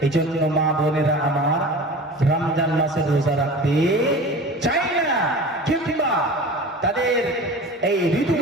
এই জন্য মা বোনেরা আমার রমজান মাসে রোজা রাখতে চাই না, কিংবা তাদের এই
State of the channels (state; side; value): normal; both; correlation 0.36